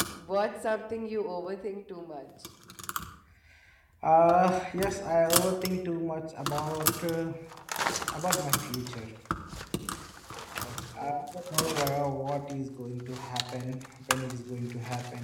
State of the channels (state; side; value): identical; both; correlation 1.00